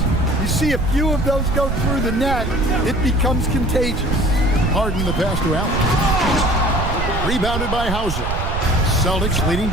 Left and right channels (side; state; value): right; noise; rumble, 3 dB below the sound